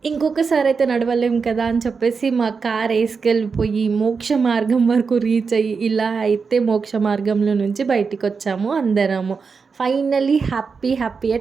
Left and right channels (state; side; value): quieter; left; 5.2 dB